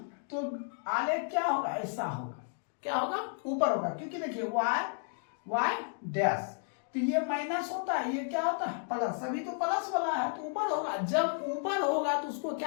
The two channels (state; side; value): silent; right; 56 dB below the other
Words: तो आलेख क्या होगा ऐसा होगा, क्या होगा ऊपर होगा, क्योंकि देखिए y डैश, तो ये माइनस होता है, ये क्या होता है प्लस, सभी तो प्लस वाला है तो ऊपर होगा। जब ऊपर होगा तो उसको